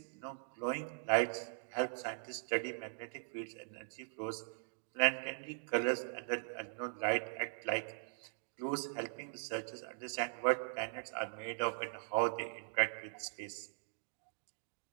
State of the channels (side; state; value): left; silent; digital silence